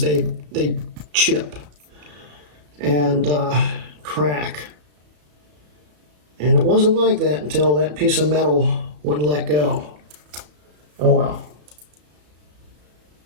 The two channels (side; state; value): left; late; 34 ms